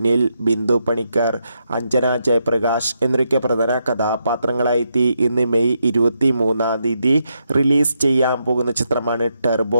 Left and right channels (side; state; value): both; inverted; correlation -0.82